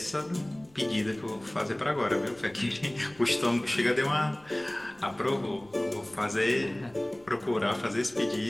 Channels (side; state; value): left; noise; rumble, 28 dB below the sound